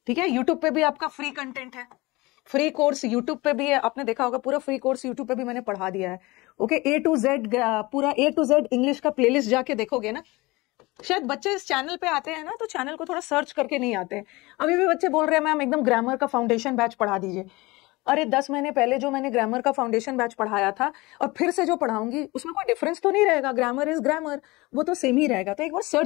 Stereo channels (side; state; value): right; quieter; 22.3 dB